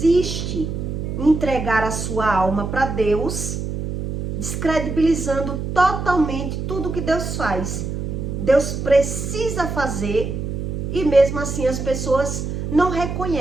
em entregar a sua alma para Deus, descredibilizando totalmente tudo que Deus faz. Deus precisa fazer, e mesmo assim as pessoas não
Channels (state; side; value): noise; right; hum, 4 dB below the sound